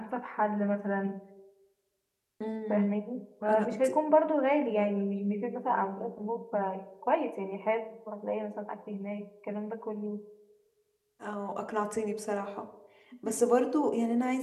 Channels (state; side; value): identical; both; correlation 1.00